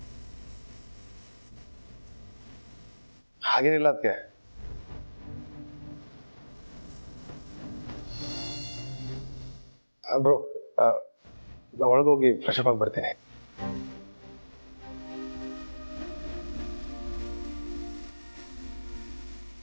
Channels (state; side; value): inverted; both; correlation -1.00